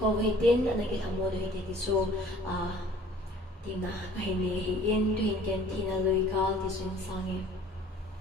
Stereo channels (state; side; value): normal; both; correlation 0.52